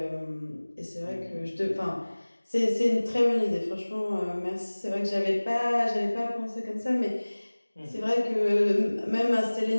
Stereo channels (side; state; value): both; inverted; correlation -1.00